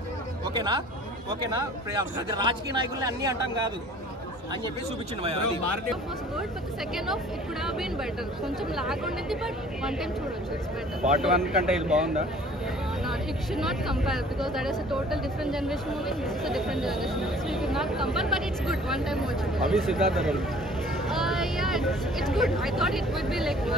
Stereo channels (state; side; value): normal; both; correlation 0.51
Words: ఓకేనా. రాజకీయ నాయకుల్ని అన్ని అంటాం కాదు అని చెప్పి చూపించింది. కొంచెం లాగ్ ఉండేది, బట్ వన్ టైం చూడొచ్చు. పార్ట్ 1 కంటే ఇది బాగుందా? It should not compare because that is a total different generation movie. This is a different generation movie, so you could not compare. But it's good. One time watch it. Abhi Siddhartha role. Yeah, it's good. I thought it would be like